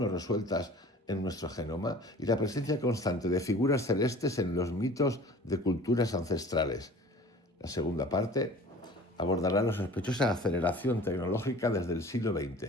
resueltas en nuestro genoma y la presencia constante de figuras celestes en los mitos de culturas ancestrales. La segunda parte abordará la sospechosa aceleración tecnológica desde el siglo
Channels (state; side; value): normal; both; correlation 0.45